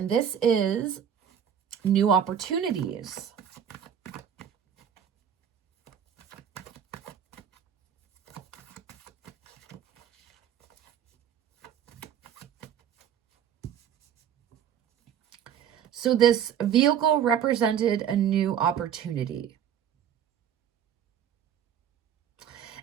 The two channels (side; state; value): left; quieter; 8.9 dB